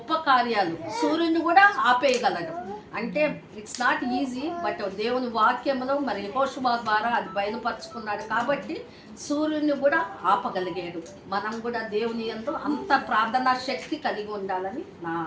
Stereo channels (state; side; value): identical; both; correlation 1.00